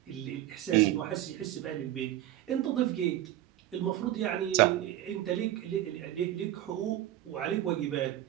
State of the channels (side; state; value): left; quieter; 13.5 dB